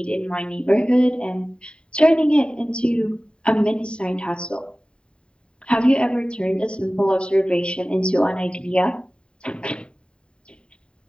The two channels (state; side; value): late; right; 0.052 ms